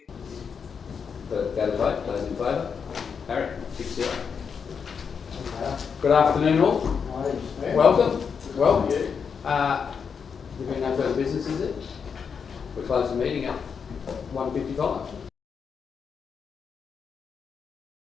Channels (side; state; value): right; quieter; 6.4 dB